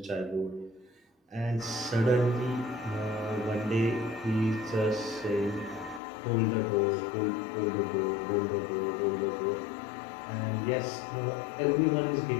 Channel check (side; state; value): right; drops out; at 6.0 s